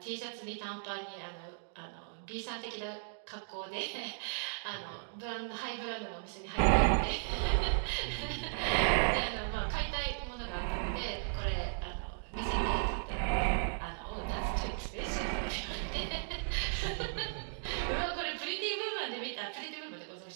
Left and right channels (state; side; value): silent; left; digital silence